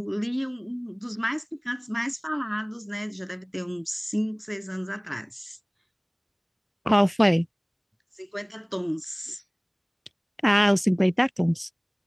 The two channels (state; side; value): identical; both; correlation 1.00